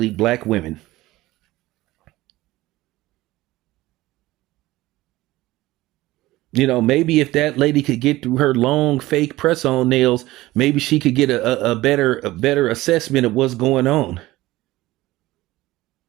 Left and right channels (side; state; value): left; quieter; 17.8 dB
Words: black women. Maybe if that lady could get through her long fake press-on nails, maybe she could get a better assessment of what's going on.